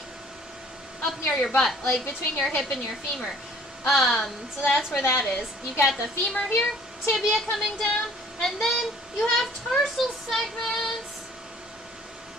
up near your butt. Like, between your hip and your femur. So that's where that is. You got the femur here, tibia coming down, and then you have tarsal segments.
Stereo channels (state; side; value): normal; both; correlation 0.55